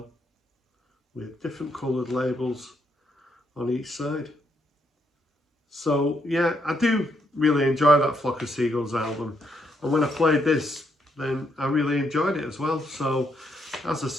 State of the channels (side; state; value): both; normal; correlation 0.76